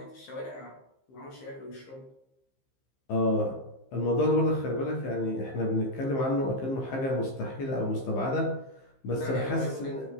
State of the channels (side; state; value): right; late; 15 ms